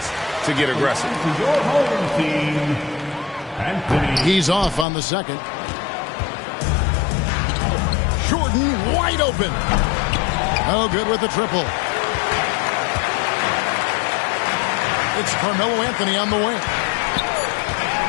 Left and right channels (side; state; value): right; drops out; at 4.9 s